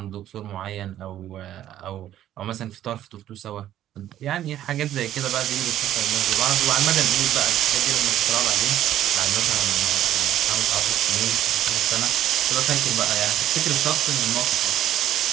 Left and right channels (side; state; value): left; quieter; 12.1 dB